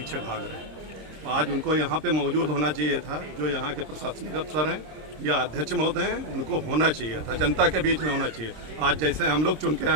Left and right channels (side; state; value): left; late; 26 ms